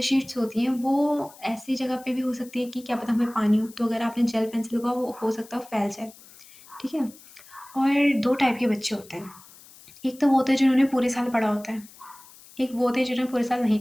शीट्स होती हैं वो ऐसी जगह पे भी हो सकती है कि क्या पता हमें पानी हो, तो अगर आपने जेल पेन से लिखा वो हो सकता है वो फैल जाए, ठीक है? और 2 टाइप के बच्चे होते हैं। एक तो वो होते हैं जिन्होंने पूरे साल पढ़ा होता है, एक वो होते हैं जिन्होंने पूरे साल नहीं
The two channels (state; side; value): noise; left; hiss, 22 dB below the sound